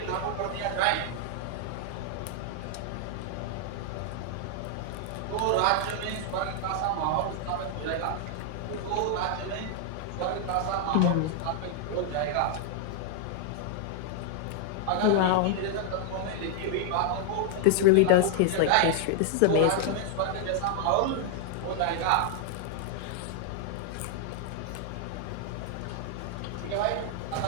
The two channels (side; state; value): both; different; correlation 0.00